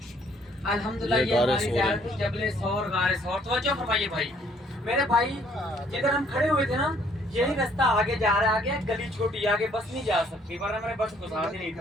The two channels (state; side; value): normal; both; correlation 0.63